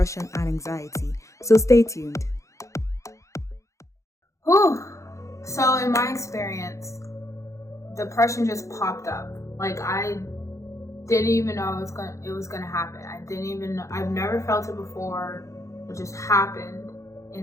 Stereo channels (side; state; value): right; late; 0.15 ms